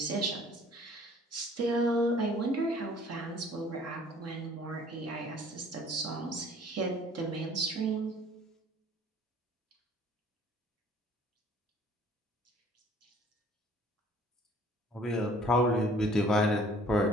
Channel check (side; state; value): both; normal; correlation 0.54